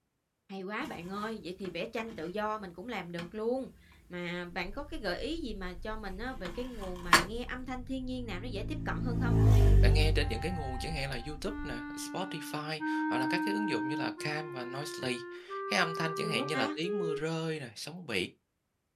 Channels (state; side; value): identical; both; correlation 1.00